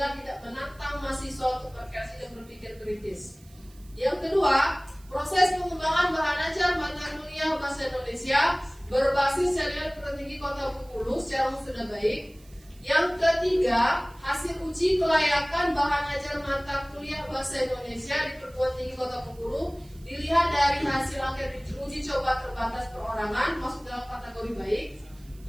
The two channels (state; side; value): noise; right; hiss, 27 dB below the sound